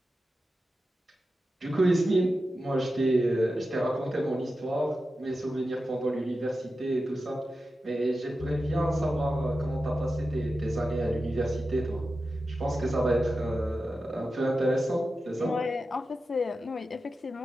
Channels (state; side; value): normal; both; correlation 0.92